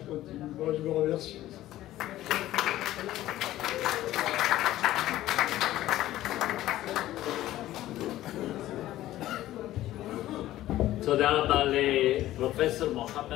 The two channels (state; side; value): quieter; right; 14.6 dB